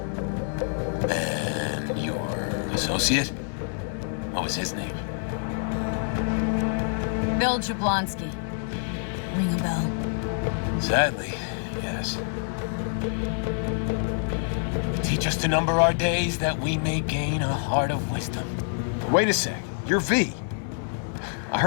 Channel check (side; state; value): right; silent; 60 dB below the other